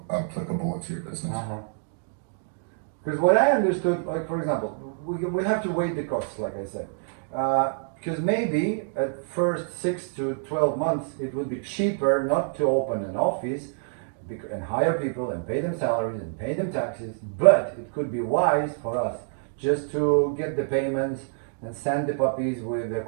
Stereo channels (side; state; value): left; silent; digital silence